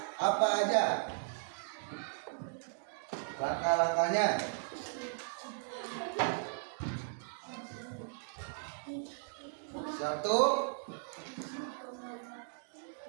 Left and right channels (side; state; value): left; silent; digital silence